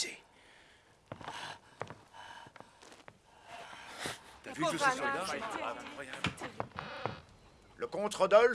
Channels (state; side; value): identical; both; correlation 1.00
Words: T'as vu tous ces soldats? Le comte